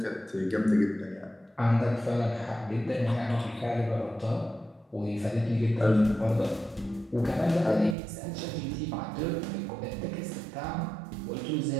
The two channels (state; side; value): drops out; left; at 8.0 s